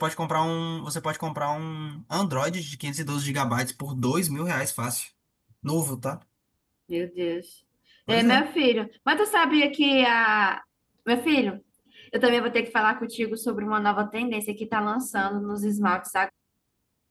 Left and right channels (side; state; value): both; identical; correlation 1.00